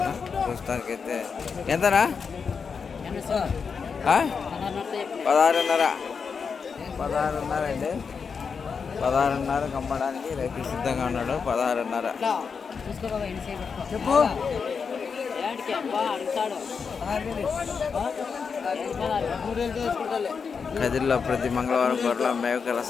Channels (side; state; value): right; quieter; 5.7 dB